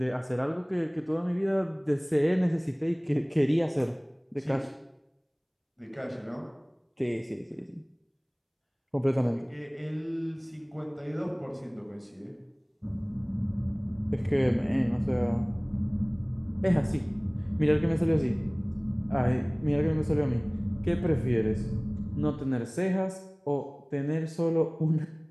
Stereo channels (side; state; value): both; identical; correlation 1.00